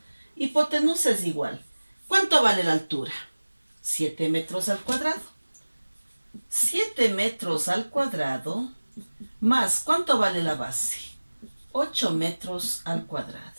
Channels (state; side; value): inverted; both; correlation -1.00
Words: Hipotenusa es igual. ¿Cuánto vale la altura? 7 metros al cuadrado. 7 metros al cuadrado más, ¿cuánto vale la base? 8 metros al cuadrado.